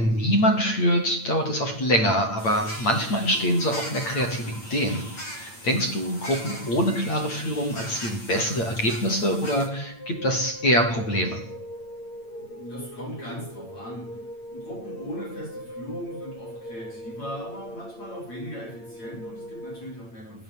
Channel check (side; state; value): right; late; 8.8 ms